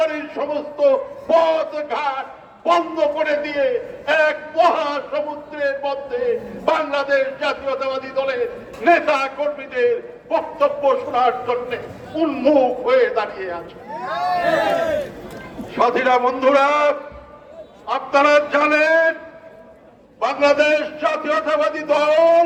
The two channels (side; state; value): both; identical; correlation 1.00